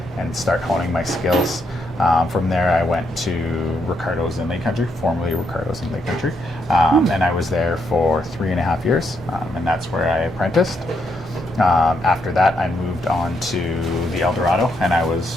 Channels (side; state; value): both; normal; correlation 0.77